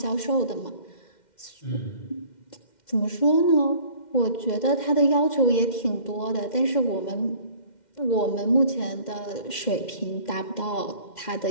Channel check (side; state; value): right; late; 2.1 ms